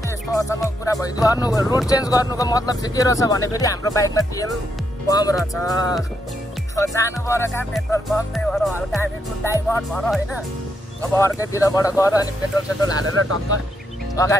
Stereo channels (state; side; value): normal; both; correlation 0.79